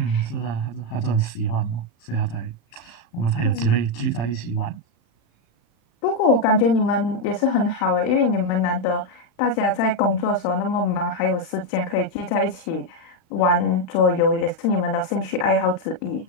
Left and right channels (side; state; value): right; late; 35 ms